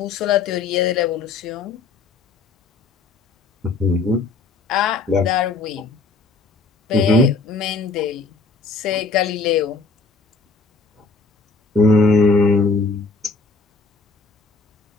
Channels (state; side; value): quieter; right; 3.9 dB